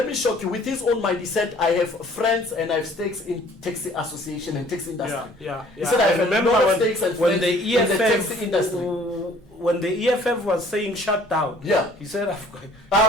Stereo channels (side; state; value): both; normal; correlation 0.55